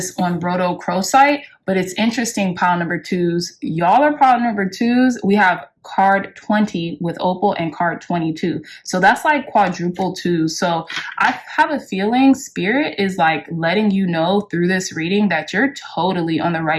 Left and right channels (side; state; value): both; identical; correlation 1.00